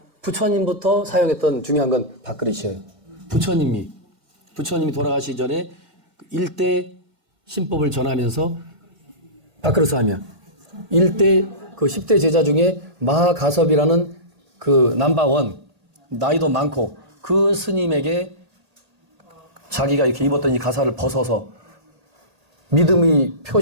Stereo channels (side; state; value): left; late; 1.8 ms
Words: 부처님부터 사용했던 중요한 건 밥그릇이에요. 부처님이 돌아가시기 전에 일대 신법을 전하면서 밥그릇을 하며 일대 그 10대 제자 중에 마하가섭이라는 그 넘버원 나이도 많고 그 스님에게 자기가 이렇게 입었던 이 가사를 벗어서 믿음의